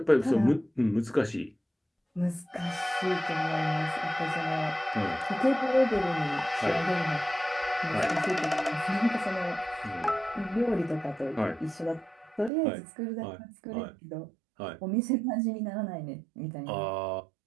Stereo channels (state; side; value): drops out; left; at 12.5 s